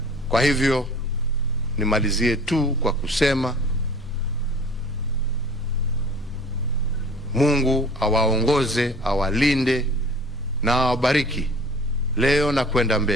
Kwa hivyo nimalizie tu kwa kusema Mungu awaongoze, awalinde na awabariki leo na kwenda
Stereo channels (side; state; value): both; normal; correlation 0.46